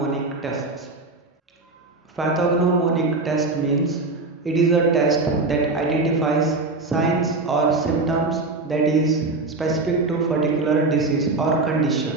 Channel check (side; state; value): left; quieter; 3.5 dB